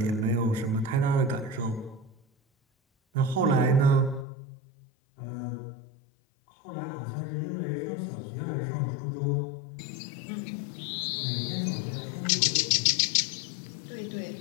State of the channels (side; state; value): right; drops out; at 4.2 s